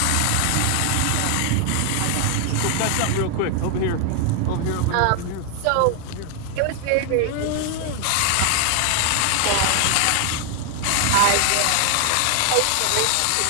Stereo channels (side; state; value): both; different; correlation 0.00